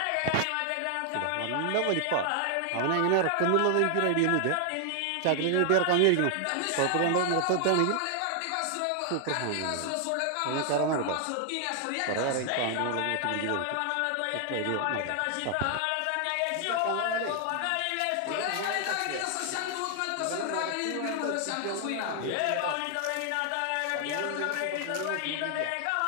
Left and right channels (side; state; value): both; different; correlation 0.00